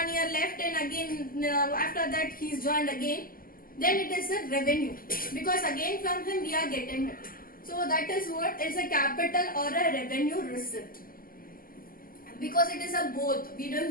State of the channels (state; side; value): late; right; 0.42 ms